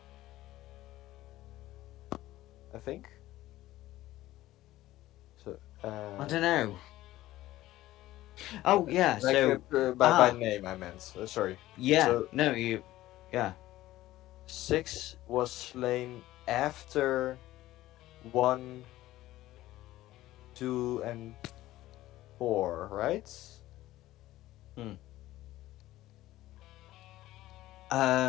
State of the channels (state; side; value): quieter; right; 15.8 dB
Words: I think. So. I don't know. Oh yeah, Like, so by name I meant. Sorry. yeah, So no, you, yeah. 6 was slain after 1, 2, and 4, right?